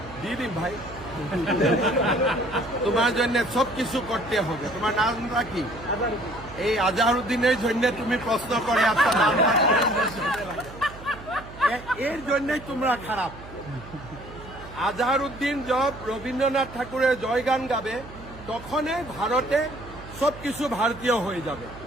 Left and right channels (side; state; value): right; noise; hum, 16 dB below the sound